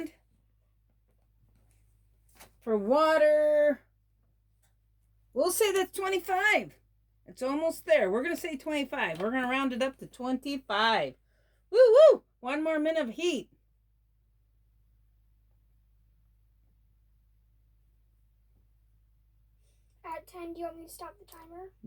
For water, we'll say that's 25. It's almost there. We're going to say 25. We're going to round it up to 25. Woo woo! 1 more minute of heat. At 10, do you want me to stop the timer?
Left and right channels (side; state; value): both; identical; correlation 1.00